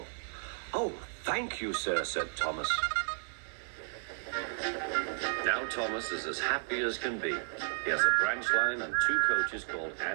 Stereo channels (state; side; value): silent; left; 56 dB below the other